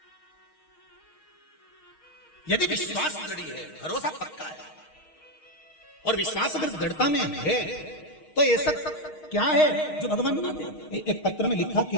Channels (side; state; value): right; late; 6.5 ms